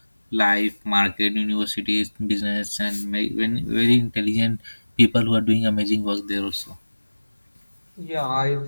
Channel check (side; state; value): both; inverted; correlation -1.00